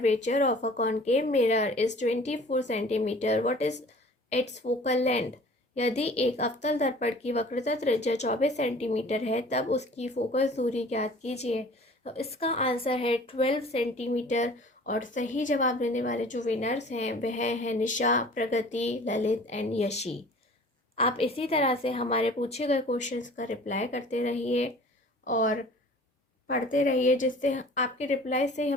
of a concave mirror is 24 centimetre, what is it's focal length. यदि एक अवतल दर्पण की वक्रता त्रिज्या 24 सेंटीमीटर है, तब उसकी फोकस दूरी ज्ञात कीजिए। तो इसका आंसर है 12 सेंटीमीटर। और सही जवाब देने वाले जो विनर्स हैं वह हैं निशा, प्रगति, ललित एंड यशी। आप इसी तरह से हमारे पूछे गए क्वेश्चंस का रिप्लाई करते रहिए और पढ़ते रहिए, जिससे आपके रिप्लाई से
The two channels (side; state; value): both; normal; correlation 0.47